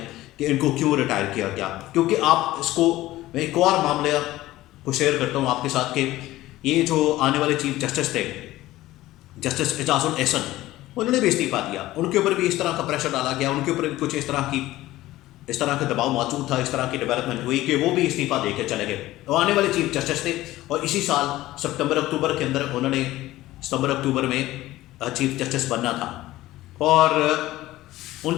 کہ ان کو کیوں ریٹائر کیا گیا۔ کیونکہ آپ اس کو میں ایک اور معاملہ کو شیئر کرتا ہوں آپ کے ساتھ کہ یہ جو آنے والے چیف جسٹس تھے جسٹس اعجاز الاحسن، انہوں نے بھی استعفیٰ دیا، ان کے اوپر بھی اس طرح کا پریشر ڈالا گیا، ان کے اوپر بھی کچھ اس طرح کا دباؤ موجود تھا، اس طرح کی ڈیولپمنٹ ہوئی کہ وہ بھی استعفیٰ دے کے چلے گئے۔ وہ آنے والے چیف جسٹس تھے اور اسی سال ستمبر اکتوبر کے اندر انہوں نے ستمبر اکتوبر میں چیف جسٹس بننا تھا، اور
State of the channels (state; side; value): quieter; right; 16.4 dB